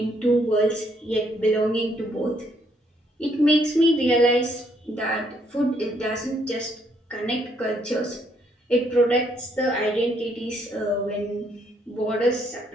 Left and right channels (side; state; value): both; normal; correlation 0.70